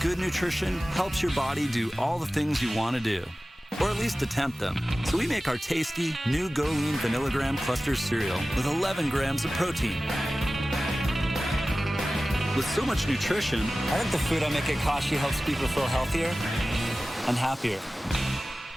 good nutrition helps your body do all the things you want to do, or at least attempt them. So we make our tasty, new Go Lean Vanillagram Cluster cereal with 11 grams of protein. With so much nutrition, I think the food I make at Kashi helps people feel healthier and happier.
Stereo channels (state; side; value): normal; both; correlation 0.96